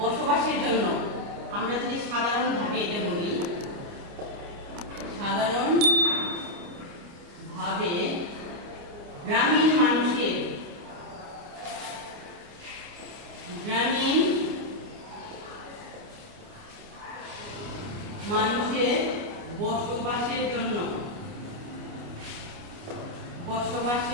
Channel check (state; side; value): late; left; 29 ms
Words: বসবাসের জন্য, আমরা যদি সাধারণভাবে এটা বলি, সাধারণভাবে গ্রামীণ মানুষের বসবাসের